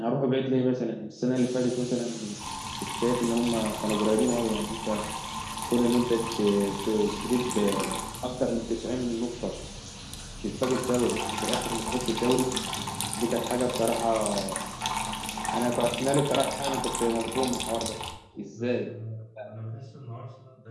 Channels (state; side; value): identical; both; correlation 1.00